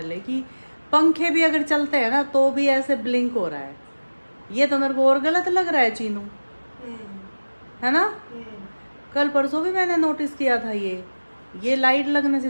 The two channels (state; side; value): inverted; both; correlation -1.00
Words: कि पंखे भी अगर चलते हैं ना तो भी ऐसे ब्लिंक हो रहा है। ये तो मेरे को और गलत लग रहा है चीनू, है ना। कल परसों भी मैंने नोटिस किया था ये लाइट लगने